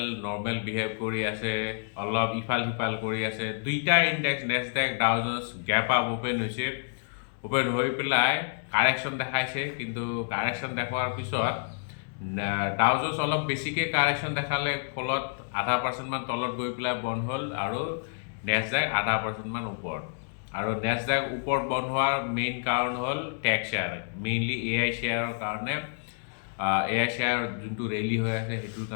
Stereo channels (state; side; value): silent; right; digital silence